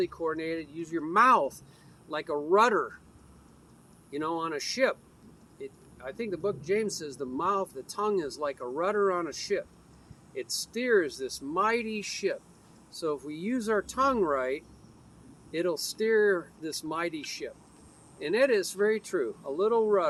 coordinated. Use your mouth like a rudder, you know, on a ship. I think the book James says the mouth, the tongue is like a rudder on a ship. It steers this mighty ship. So if we use our tongue right, it'll steer this mighty ship. And it is very true. A little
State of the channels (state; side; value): identical; both; correlation 1.00